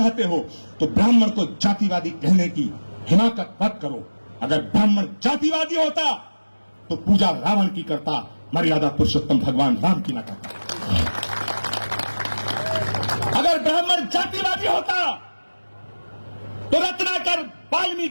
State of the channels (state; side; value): inverted; both; correlation -1.00